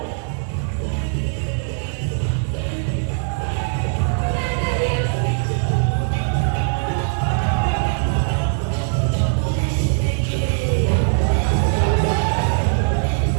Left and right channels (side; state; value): left; silent; digital silence